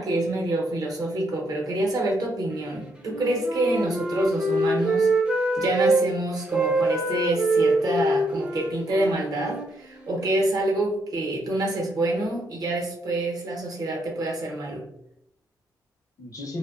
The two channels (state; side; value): normal; both; correlation 0.75